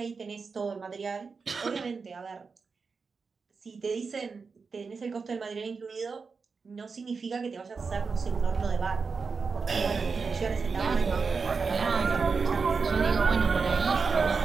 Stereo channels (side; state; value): left; quieter; 4.9 dB